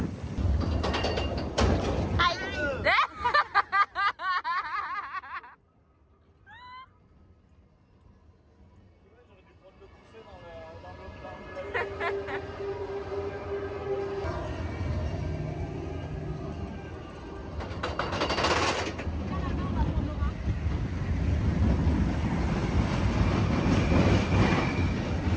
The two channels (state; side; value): identical; both; correlation 1.00